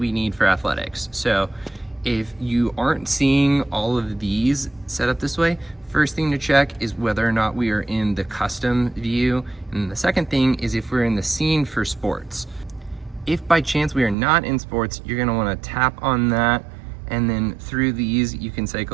need for athletics. So if you aren't seeing all of these set up this way, first thing to check is whether or not we are in the custom view. And the second thing is if we're in the scene for sports. If by chance we are not in sports, you're gonna wanna tap on that, and then through these you can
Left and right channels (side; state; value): left; drops out; at 14.2 s